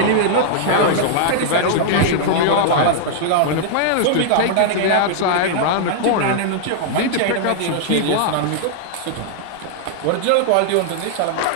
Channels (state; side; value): different; both; correlation -0.01